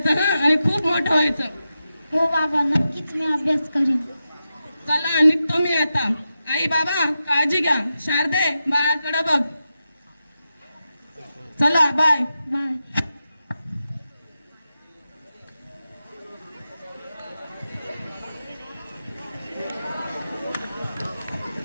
हा, आणि खूप मोठं व्हायचं. हो बाबा, नक्कीच मी अभ्यास करीन. चला निघतो मी आता. आई बाबा काळजी घ्या. शारदे, बाळाकडे बघ. चला बाय. बाय.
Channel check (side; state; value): both; inverted; correlation -0.90